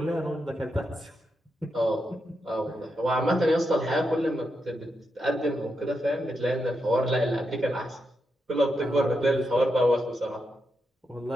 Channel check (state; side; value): normal; both; correlation 0.85